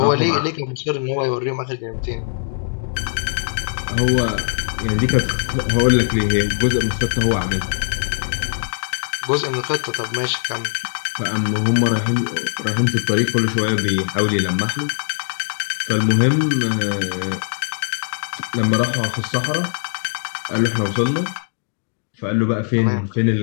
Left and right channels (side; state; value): right; silent; digital silence